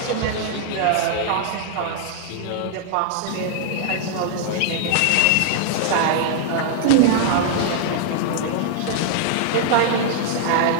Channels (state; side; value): different; both; correlation -0.01